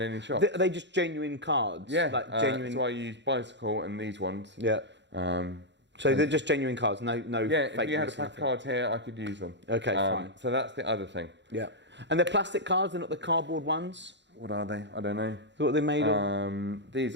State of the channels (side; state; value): left; late; 0.52 ms